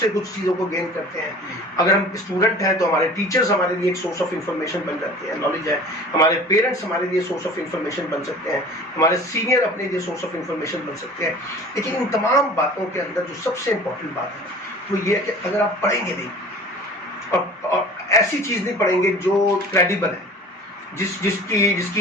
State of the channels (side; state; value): both; normal; correlation 0.43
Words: کچھ چیزوں کو گین کرتے ہیں۔ اگر ہم اسٹوڈنٹ ہیں تو ہمارے ٹیچرز ہمارے لیے ایک سورس آف انفارمیشن بن جاتے ہیں، نالج ہے۔ ہمارے پیرنٹس ہمارے لیے سورس آف انفارمیشن بن سکتے ہیں، ہمارے سینئر اپنے لیے سورس آف انفارمیشن بن سکتے ہیں۔ لیکن ان تمام باتوں کے اندر جو سب سے امپورٹنٹ بات ہے وہ یہ ہے کہ اگر آپ پڑھیں گے نہیں اور ایسی چیز نہیں پڑھیں گے جو کریڈیبل ہے، جس